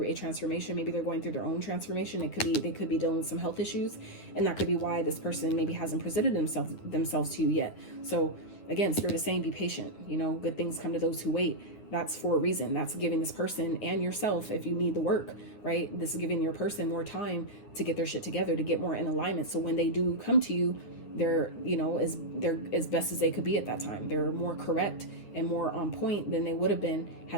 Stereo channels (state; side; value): late; right; 9.8 ms